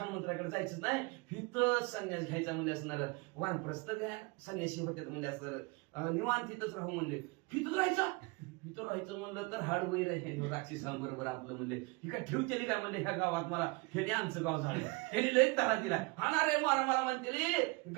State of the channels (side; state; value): left; quieter; 27.0 dB